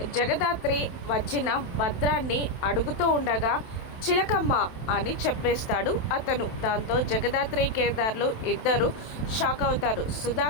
జగదాత్రి వచ్చిన భద్రాన్ని అడుగుతూ ఉండగా, చిలకమ్మ అని చెప్పేస్తాడు అతను. దాంతో జగదాత్రి కేదార్లు ఇద్దరు షాక్ అవుతారు.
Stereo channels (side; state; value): right; late; 27 ms